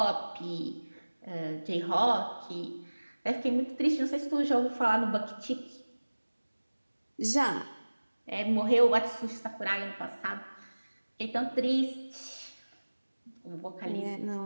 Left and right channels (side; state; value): both; inverted; correlation -1.00